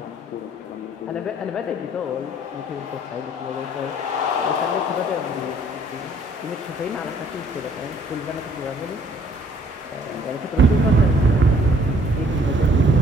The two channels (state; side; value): normal; both; correlation 0.60